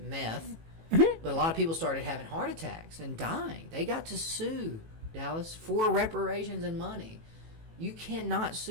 but a lot of people started having heart attacks and dying. They got to sue Dallas for reparations and money. You cannot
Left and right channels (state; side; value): late; left; 18 ms